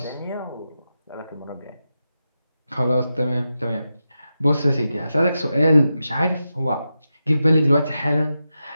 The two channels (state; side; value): inverted; both; correlation -0.90